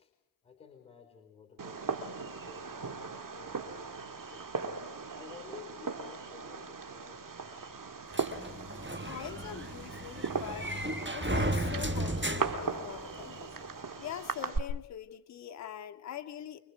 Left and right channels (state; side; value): normal; both; correlation 0.15